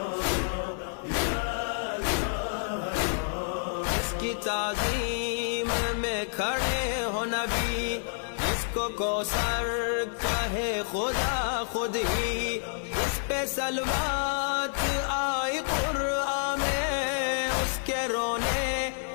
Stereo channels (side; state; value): right; silent; 59 dB below the other